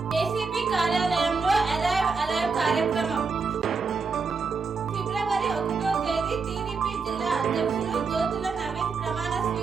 ఏసీపీ కార్యాలయంలో అలైవ్ కార్యక్రమం. ఫిబ్రవరి 1వ తేదీ టీడీపీ జిల్లా అధ్యక్షులు జ్యోతుల నవీన్ ప్రమాణ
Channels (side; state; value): left; quieter; 4.8 dB